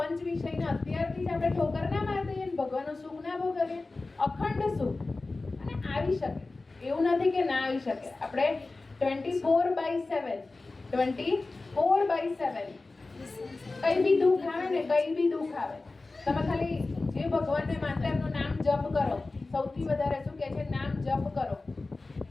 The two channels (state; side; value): quieter; right; 3.4 dB